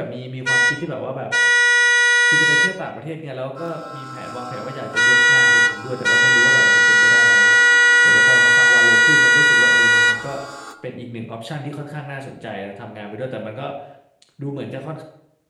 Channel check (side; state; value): both; identical; correlation 1.00